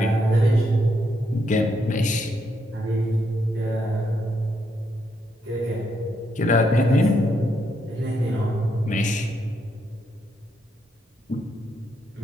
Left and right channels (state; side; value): normal; both; correlation 0.78